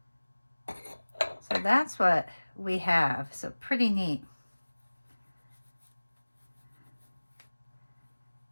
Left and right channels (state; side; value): inverted; both; correlation -1.00